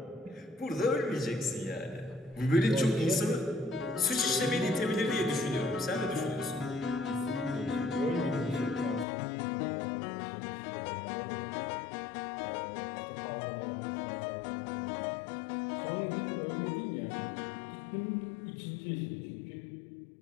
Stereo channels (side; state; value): right; drops out; at 9.1 s